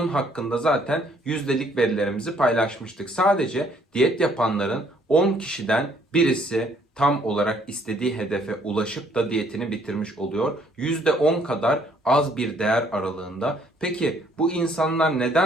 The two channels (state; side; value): normal; both; correlation 0.64